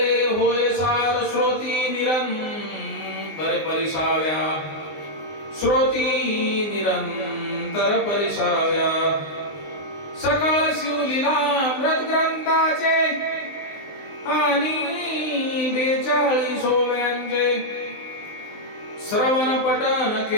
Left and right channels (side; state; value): right; late; 19 ms